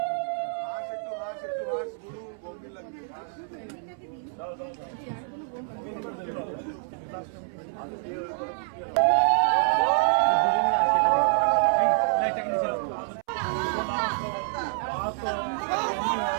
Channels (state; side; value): silent; left; 60 dB below the other